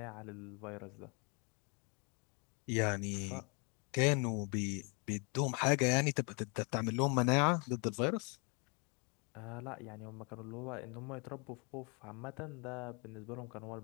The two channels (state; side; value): quieter; right; 34.8 dB